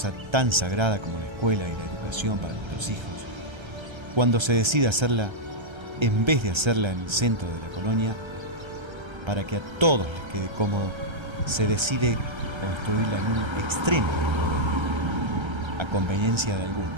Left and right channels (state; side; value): late; left; 1.3 ms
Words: tan sagrada como la escuela y la educación para nuestros hijos, cuando se decide hacerla, en vez de hacerla en el centro de la colonia, para que a todos les quede cómodo, se decide construirla en un extremo de la colonia. A conveniencia de